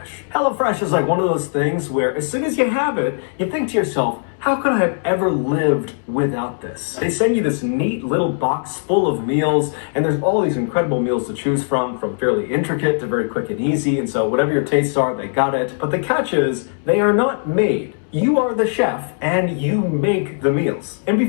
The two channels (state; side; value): silent; right; digital silence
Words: HelloFresh is like one of those things where as soon as you have it, you think to yourself, how could I have ever lived without this? They send you this neat little box full of meals, and there's all these incredible meals to choose from fairly intricate to very quick and easy, and so whatever your tastes are, they got it. But the catch is, they are not made. You are the chef, and you make the meals. And